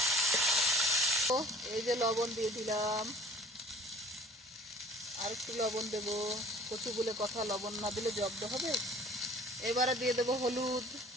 এই যে লবণ দিয়ে দিলাম, আর একটু লবণ দেবো। কচু বলে কথা, লবণ না দিলে জব্দ হবে। এবারে দিয়ে দেবো হলুদ।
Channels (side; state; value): both; normal; correlation 0.50